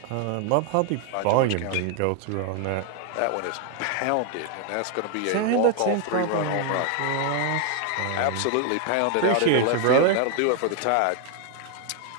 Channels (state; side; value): different; both; correlation 0.00